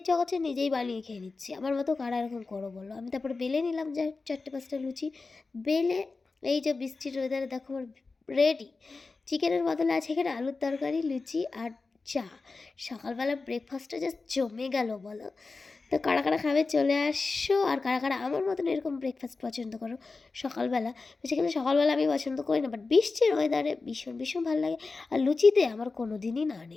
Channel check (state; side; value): quieter; right; 4.0 dB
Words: করছে, নিজেই বানিয়ে খেয়ে নিচ্ছি। আমার মতো কারা এরকম করো বলো? আমি তারপরে বেলে নিলাম যা 4-5টা লুচি বেলে। এই যে বৃষ্টির ওয়েদারে দেখো আমার রেডি। চিকেনের বদলে আছে এখানে আলুর তরকারি, লুচি আর চা। সকালবেলা ব্রেকফাস্টটা জাস্ট জমে গেল বলো। তো কারা কারা খাবে চলে আসো, আর কারা কারা আমার মতন এরকম ব্রেকফাস্ট পছন্দ করো সকালবেলা। বেসিক্যালি সকালবেলা আমি পছন্দ করি না, বাট বৃষ্টির ওয়েদারে ভীষণ ভীষণ ভালো লাগে। আর লুচিতে আমার কোনো দিনই না